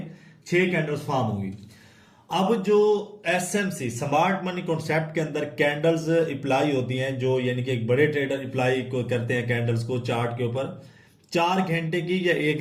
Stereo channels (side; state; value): both; identical; correlation 1.00